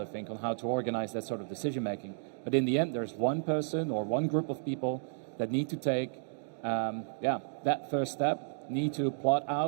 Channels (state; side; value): silent; left; digital silence